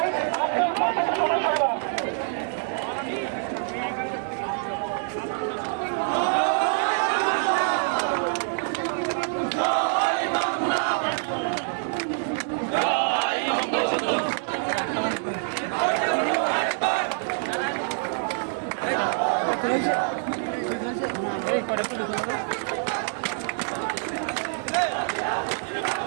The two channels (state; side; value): silent; left; digital silence